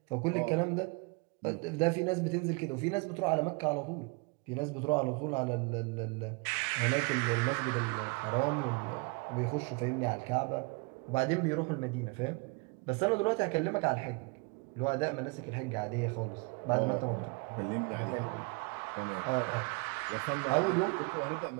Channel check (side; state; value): left; quieter; 30.0 dB